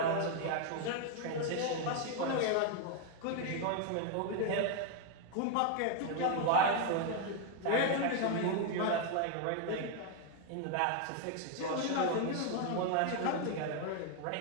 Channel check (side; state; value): both; different; correlation 0.01